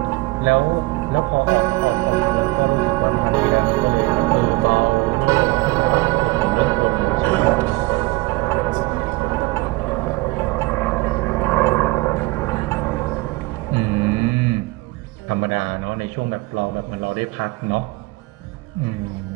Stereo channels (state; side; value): quieter; left; 22.3 dB